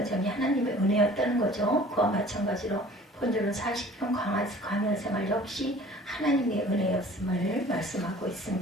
하나님의 은혜였다는 거죠. 그와 마찬가지로 본절은 40년 광야 생활 역시 하나님의 은혜였음을 말씀하고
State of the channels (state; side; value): normal; both; correlation 0.48